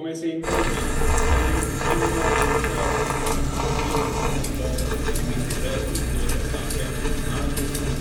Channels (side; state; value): both; identical; correlation 1.00